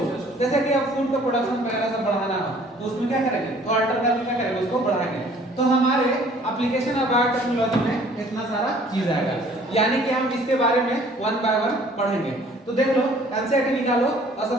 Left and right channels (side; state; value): both; normal; correlation 0.55